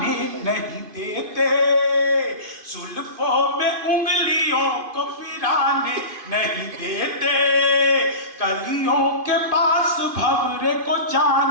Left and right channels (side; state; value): left; late; 2.5 ms